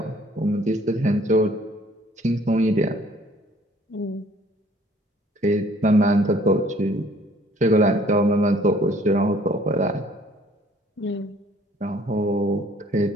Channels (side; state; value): both; normal; correlation 0.58